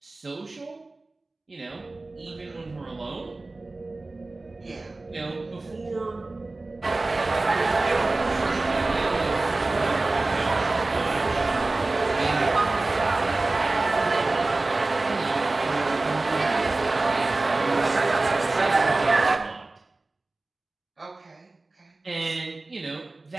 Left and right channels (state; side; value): quieter; left; 3.2 dB